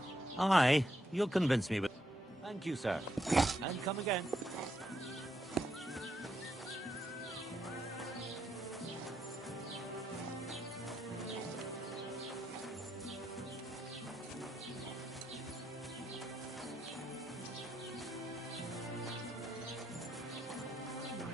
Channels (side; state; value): both; normal; correlation 0.79